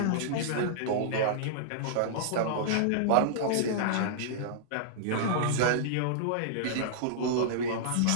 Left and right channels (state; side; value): different; both; correlation -0.02